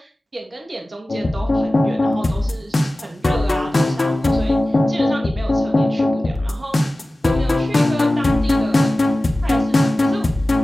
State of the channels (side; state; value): both; normal; correlation 0.97